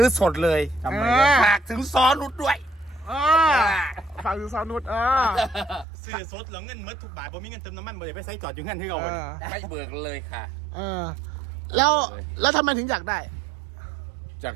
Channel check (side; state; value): left; drops out; at 5.9 s